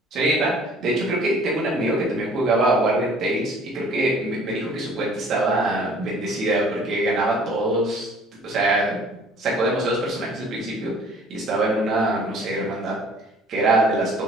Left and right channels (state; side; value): normal; both; correlation 0.53